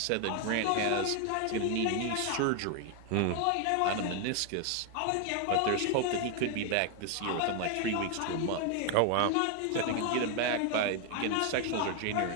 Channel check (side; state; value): both; different; correlation 0.01